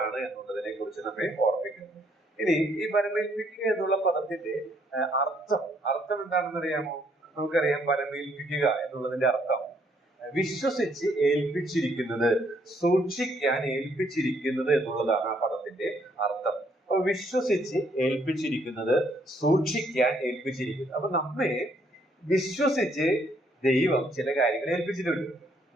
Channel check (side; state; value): both; normal; correlation 0.69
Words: എന്നുള്ളതിനെ കുറിച്ച് നമ്മെ ഓർമ്മിക്കുന്നു. ഇനി ഈ വരമേൽപ്പിക്കുക എന്നുള്ള പദത്തിന്റെ അർത്ഥം എന്താണെന്ന് അറിയാമോ? നമുക്കറിയാം, വരമേൽപ്പിക്കുക എന്നുള്ളതിന്റെ അർത്ഥം വിശ്വസിച്ച് ഏൽപ്പിച്ചിരിക്കുന്നത്, സൂക്ഷിക്കാൻ ഏൽപ്പിച്ചിരിക്കുന്നത് എന്നുള്ളതാണ് ആ പദത്തിന്റെ അർത്ഥം. അപ്പൊ വിശ്വസിച്ച് ഏൽപ്പിച്ചിരിക്കുന്നത്, സൂക്ഷിക്കാൻ ഏൽപ്പിച്ചിരിക്കുന്നത്. അപ്പൊ നമ്മെ വിശ്വസിച്ച് ദൈവം ചില കാര്യങ്ങൾ ഏൽപ്പിച്ചിട്ടുണ്ട്,